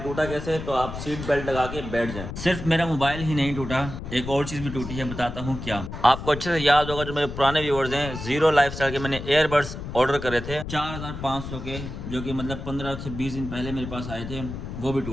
कैसे है, तो आप सीट बेल्ट लगा के बैठ जाएं। सिर्फ मेरा मोबाइल ही नहीं टूटा, एक और चीज भी टूटी है, बताता हूँ क्या। आपको अच्छे से याद होगा, जो मेरे पुराने व्यूअर्स हैं, जीरो लाइफस्टाइल के मैंने एयरबड्स ऑर्डर करे थे 4500 के, जो कि मतलब 15 से 20 दिन पहले मेरे पास आए थे, वो भी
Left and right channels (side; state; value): left; noise; rumble, 8 dB below the sound